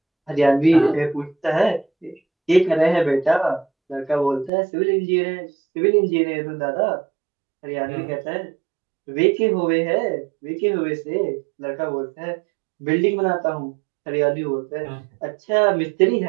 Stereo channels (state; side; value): drops out; left; at 4.5 s